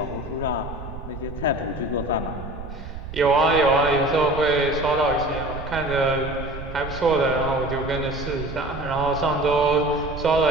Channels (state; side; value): noise; right; rumble, 10 dB below the sound